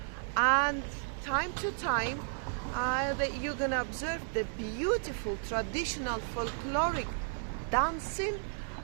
and time to time that you're gonna observe the beautiful traditional folkloric dancing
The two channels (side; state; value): left; silent; digital silence